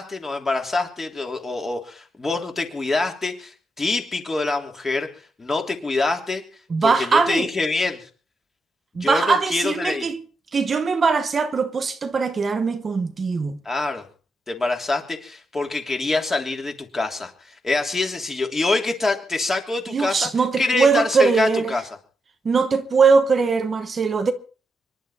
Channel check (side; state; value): both; normal; correlation 0.84